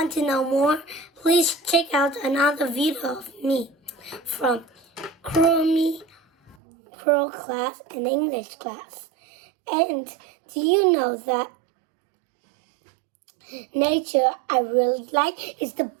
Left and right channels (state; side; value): drops out; left; at 6.6 s